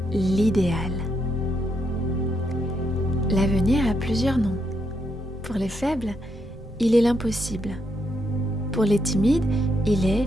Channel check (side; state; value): both; normal; correlation 0.79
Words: l'idéal. L'avenir a plusieurs noms. Pour les faibles, il est l'impossible. Pour les timides, il est